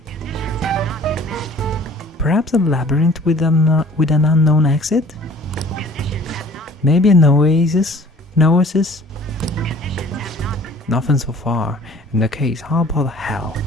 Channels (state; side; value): normal; both; correlation 0.50